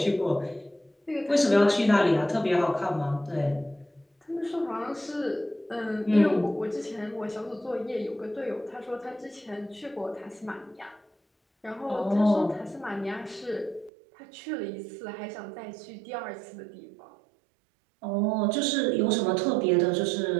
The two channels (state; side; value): drops out; left; at 13.9 s